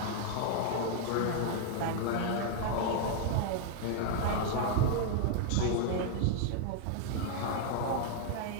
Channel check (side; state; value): both; different; correlation 0.00